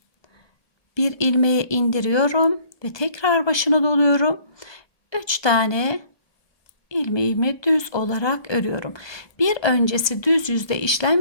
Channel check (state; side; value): late; right; 1.2 ms